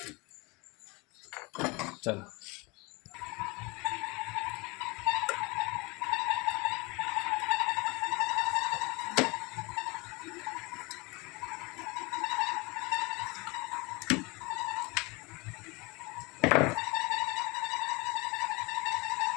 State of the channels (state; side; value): quieter; right; 26.2 dB